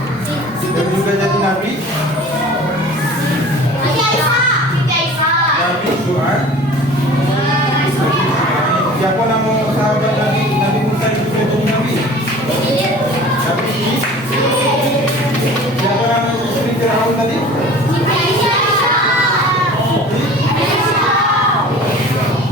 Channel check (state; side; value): normal; both; correlation 0.43